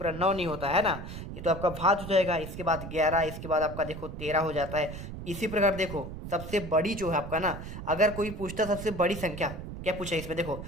9 नहीं होता है ना, ये तो आपका भाज्य हो जाएगा। इसके बाद 11, इसके बाद आपका देखो 13 हो जाता है। इसी प्रकार देखो सबसे बड़ी जो है आपका ना, अगर कोई पूछता सबसे बड़ी संख्या, क्या पूछा है इसमें, देखो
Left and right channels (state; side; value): noise; right; rumble, 9 dB below the sound